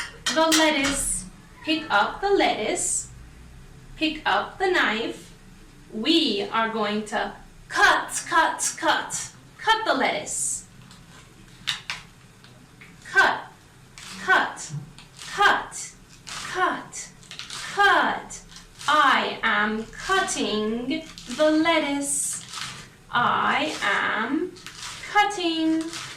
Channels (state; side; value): identical; both; correlation 1.00